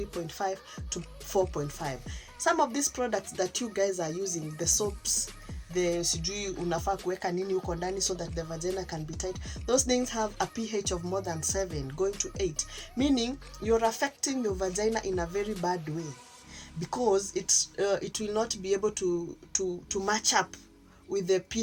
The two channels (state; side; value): identical; both; correlation 1.00